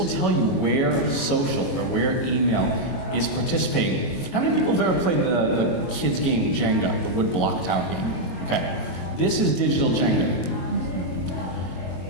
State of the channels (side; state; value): right; late; 22 ms